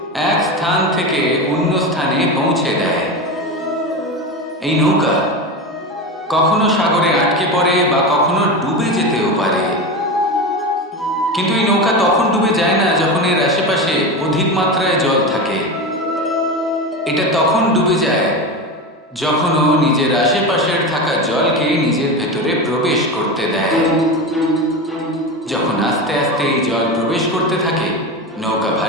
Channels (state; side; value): normal; both; correlation 0.22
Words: এক স্থান থেকে অন্য স্থানে পৌঁছে দেয়। এই নৌকা কখনো সাগরে আটকে পড়ে বা কখনো ডুবে যেতেও পারে। কিন্তু এই নৌকা তখন ডুবে যায় না যখন এর আশেপাশে অধিক মাত্রায় জল থাকে। এটা তখন ডুবে যায় যখন ও নিজের আশেপাশের থাকা জলকে নিজের ভেতরে প্রবেশ করতে দেয়। যখন আস্তে আস্তে এই জল প্রবেশ করতে থাকে, নৌকা